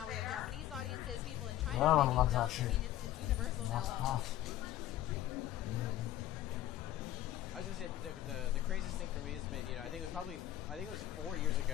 we have Japanese audiences, people in China are making dubs. I mean, it's universal now almost. I was gonna say the craziest thing for me has been, you know, I think it was 4 years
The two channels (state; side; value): quieter; right; 13.6 dB